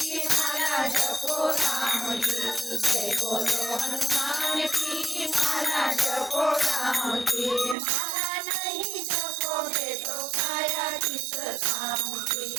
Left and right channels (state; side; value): drops out; left; at 7.8 s